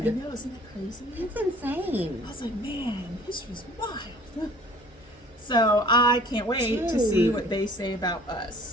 know, isn't that crazy? It's insane. I was like, man, history's wild. So I can't wait to see Dude. what they say about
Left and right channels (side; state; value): both; normal; correlation 0.50